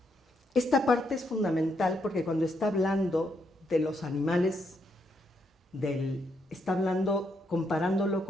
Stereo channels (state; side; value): normal; both; correlation 0.78